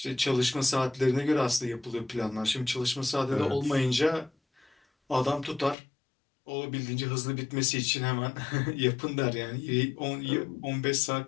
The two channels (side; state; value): right; drops out; at 5.8 s